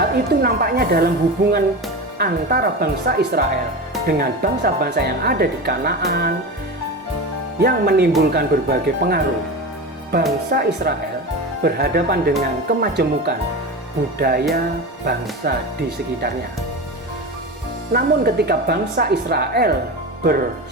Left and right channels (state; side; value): normal; both; correlation 0.25